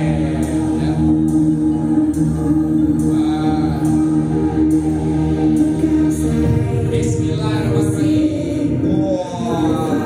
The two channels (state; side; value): identical; both; correlation 1.00